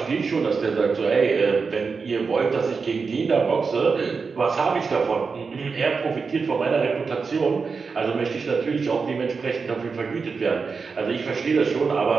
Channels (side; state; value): left; quieter; 5.0 dB